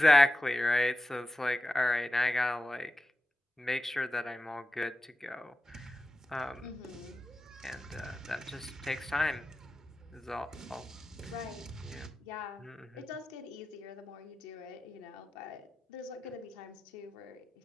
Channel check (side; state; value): both; normal; correlation 0.93